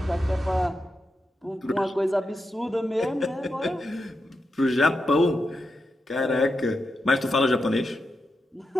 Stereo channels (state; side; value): normal; both; correlation 0.87